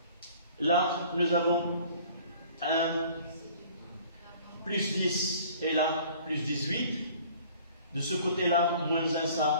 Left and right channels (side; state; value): both; inverted; correlation -0.52